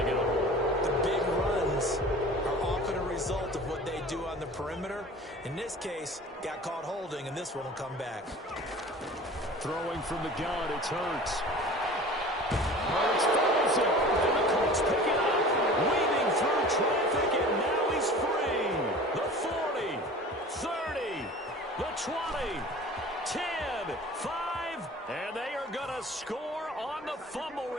get a hold. The big runs are often a result of what they do on the perimeter. In this case, got caught holding, and this one will come back. Throwing from the gun, it's Hurts. Hurts throws it, and the Colts pick it up. Weaving through traffic, and now he's free. The 40, 30, the 20, 10, 5, and they are going to score on the fumble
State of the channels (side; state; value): both; normal; correlation 0.41